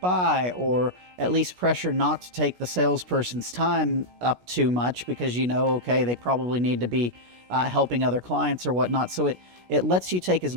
or at least pressure not to take the salesperson's time up too much, because okay, they probably need to be helping other clients or whatnot. So it lets you take as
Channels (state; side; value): late; left; 17 ms